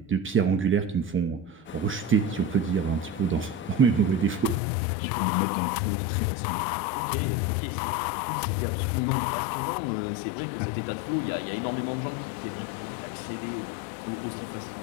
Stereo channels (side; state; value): right; drops out; at 4.6 s